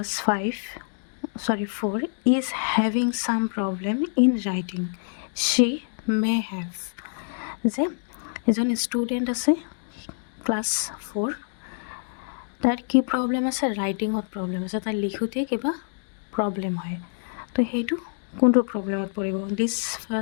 4 is having some problem in writing she may have যে এজন ষ্টুডেণ্ট আছে ক্লাছ 4 তার কি প্রবলেম আছে রাইটিংত প্রবলেম আছে তার লিখোতে কিবা প্রবলেম হয় তো সেইটো কোনটো প্রবলেমত পড়িব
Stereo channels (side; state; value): right; silent; digital silence